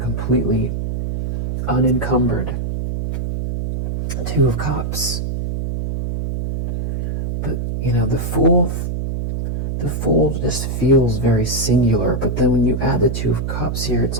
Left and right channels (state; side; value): noise; right; hum, 2 dB below the sound